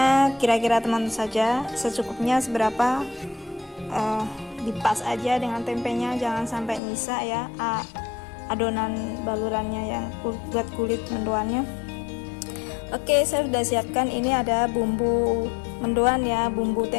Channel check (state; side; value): drops out; right; at 6.8 s